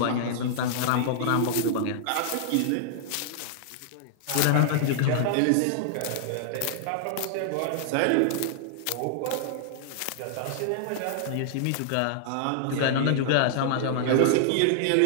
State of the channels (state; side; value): different; both; correlation -0.01